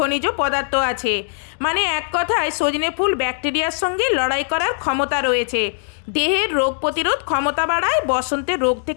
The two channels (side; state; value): right; silent; digital silence